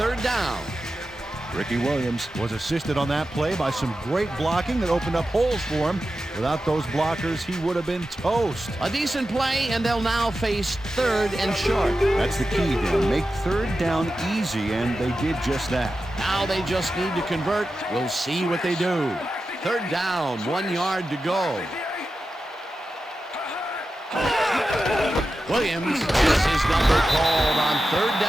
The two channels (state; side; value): normal; both; correlation 0.92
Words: down. Ricky Williams was assisted on that play by some great blocking that opened up holes for him. Without those blockers, he would have been toast. A decent play, and they'll now face third and short. That's the key, Dan. Make third down easy, and they did just that. Now they just need to convert. We'll see what they do. Third down, 1 yard to go. Williams has his number called on third